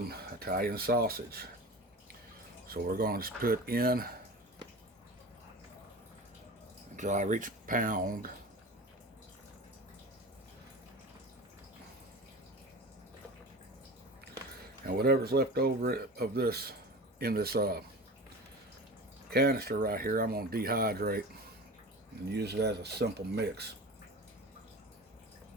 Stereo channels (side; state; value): both; normal; correlation 0.33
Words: Italian sausage. So we're going to just put in until I reach 1 pound. And whatever's left over of this in this canister right here, I'm going to dehydrate and use it as a simple mix.